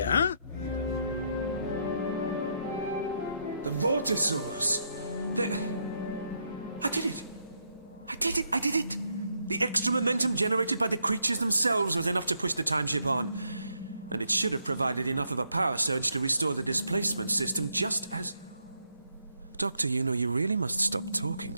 huh? The Vortisaurs! I did it! I did it! I did it! The extra momentum generated by the creatures themselves was enough to push the time ship on. And it should have provided enough of a power surge to restore the displacement system just as... Doctor, you know, you really must stop talking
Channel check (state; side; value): inverted; both; correlation -0.77